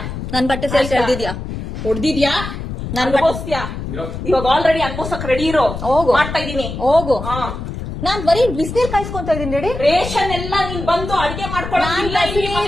ನನ್ ಬಟ್ಟೆ ಸೇರ್ಸಿ ಎಳ್ದಿದ್ಯಾ ಹೊಡ್ದಿದ್ಯಾ? ನಾನು ಅನ್ಭವಿಸ್ತೀಯಾ? ಇವಾಗ ಆಲ್ರೆಡಿ ಅನ್ಭವಿಸಕ್ ರೆಡಿ ಇರೋ. ಹೋಗು ಮಾಡ್ತಾ ಇದೀನಿ. ಹೋಗು. ನಾನ್ ಬರೀ ಬಿಸಿನೀರ್ ಕಾಯಿಸ್ಕೊಂತ ಇದೀನಿ ರೆಡಿ. ರೇಷನ್ ಎಲ್ಲ ನೀನ್ ಬಂದು ಅಡಿಗೆ ಮಾಡ್ಕೊಳ್ಳೋ.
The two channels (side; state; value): left; noise; rumble, 7 dB below the sound